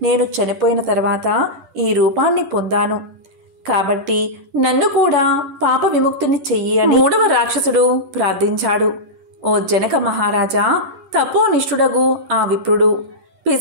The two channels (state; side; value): late; left; 10 ms